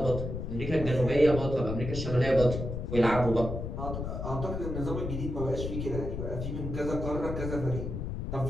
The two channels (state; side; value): noise; left; rumble, 5 dB below the sound